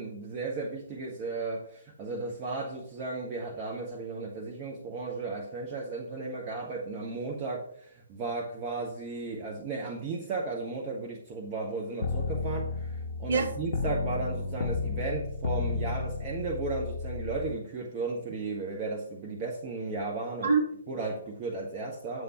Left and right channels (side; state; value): both; inverted; correlation -0.43